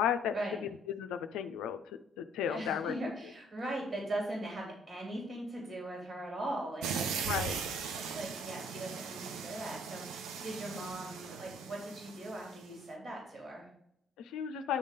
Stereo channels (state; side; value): normal; both; correlation 0.60